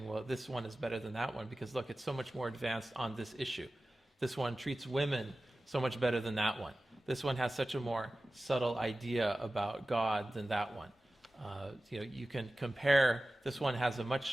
well, this one is better than that one, because look, it's so much more advanced on this issue. This one treats women so much better than that one. This one has such a more subtle idea about God than that one. You can compare, this one has a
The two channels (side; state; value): both; normal; correlation 0.95